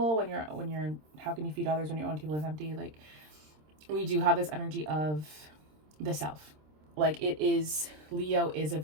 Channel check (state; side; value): late; left; 26 ms